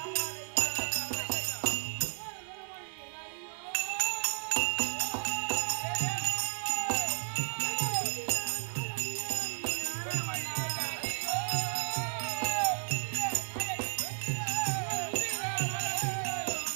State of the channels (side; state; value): left; silent; digital silence